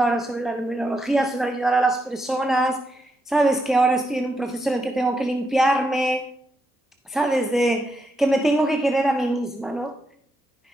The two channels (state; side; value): normal; both; correlation 0.82